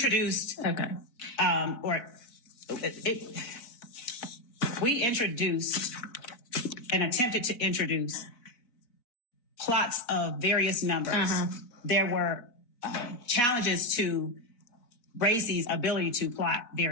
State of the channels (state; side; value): late; right; 4.3 ms